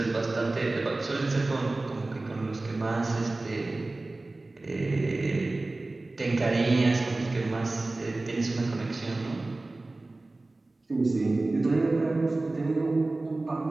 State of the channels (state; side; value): quieter; left; 3.1 dB